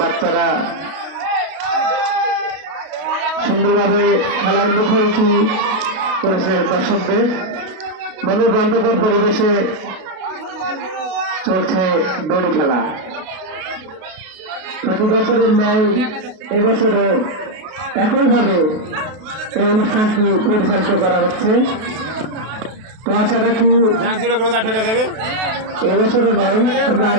বাচ্চারা সুন্দরভাবে খেলার মুখোমুখি করেছে দর্শকদের। মনোরঞ্জকর পরিবেশে চলছে দড়ি খেলা। প্রতি বছরের ন্যায় এবছরে একইভাবে এই অনুষ্ঠানটি পরিচালিত করা হচ্ছে। তো আশা রাখি এবছরে নয়, আমরা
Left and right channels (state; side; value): late; left; 32 ms